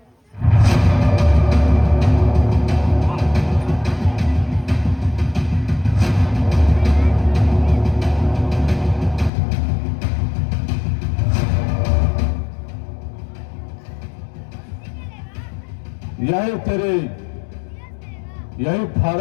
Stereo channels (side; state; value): right; drops out; at 9.3 s